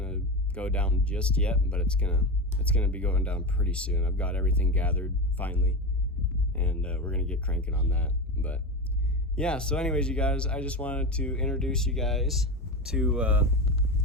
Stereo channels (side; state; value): both; normal; correlation 0.21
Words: go down just yet, but it's gonna be going down pretty soon. I've got everything gathered finally, and we're gonna get cranking on that. But yeah, so anyways, you guys, I just wanted to introduce you guys to